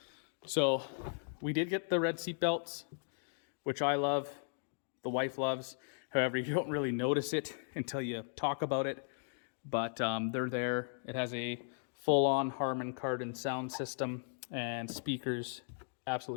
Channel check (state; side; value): silent; right; digital silence